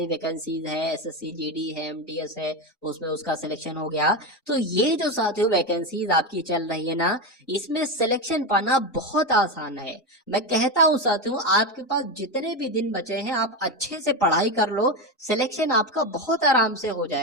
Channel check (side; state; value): both; normal; correlation 0.15